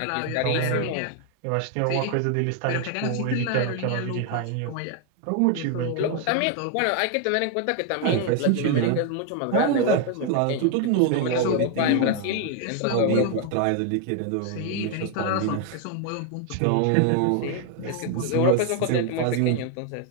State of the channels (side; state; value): both; different; correlation 0.01